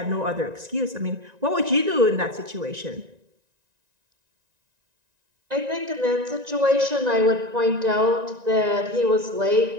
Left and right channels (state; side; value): late; left; 1.9 ms